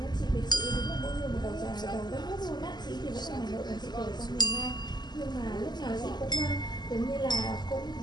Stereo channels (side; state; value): right; late; 0.21 ms